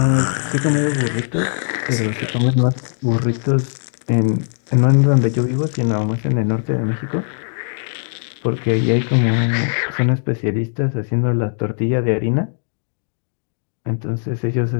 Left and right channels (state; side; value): silent; right; digital silence